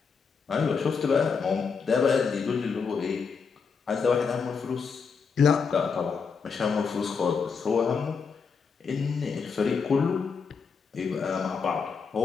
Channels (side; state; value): right; quieter; 5.6 dB